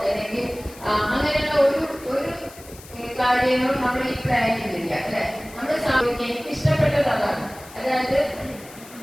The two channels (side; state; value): left; noise; hiss, 20 dB below the sound